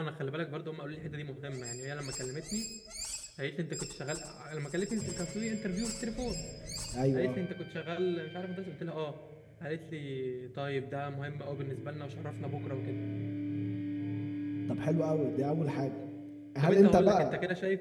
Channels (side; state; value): both; identical; correlation 1.00